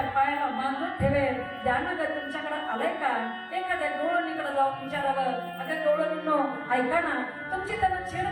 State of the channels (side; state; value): both; identical; correlation 1.00